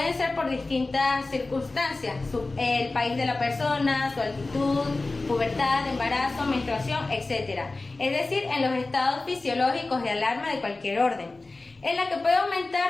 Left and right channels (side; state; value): right; quieter; 3.3 dB